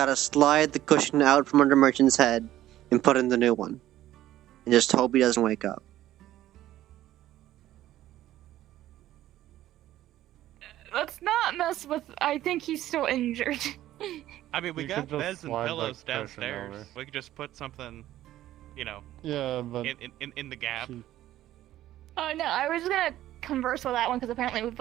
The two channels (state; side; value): quieter; left; 13.8 dB